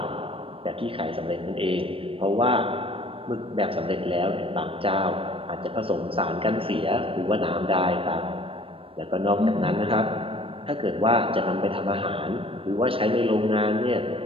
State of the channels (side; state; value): left; late; 0.27 ms